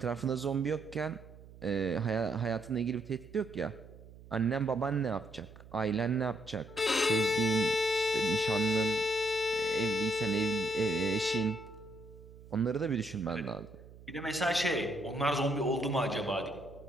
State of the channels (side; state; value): right; noise; hum, 19 dB below the sound